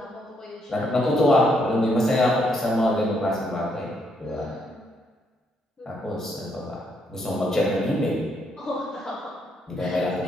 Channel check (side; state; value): both; normal; correlation 0.74